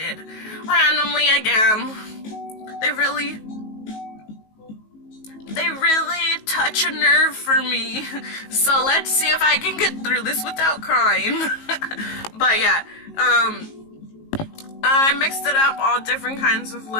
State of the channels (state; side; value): late; right; 19 ms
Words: randomly again. They really they really touch a nerve for me. So let's see if I can get through this without crying. But yeah, I mixed it up, all different kinds of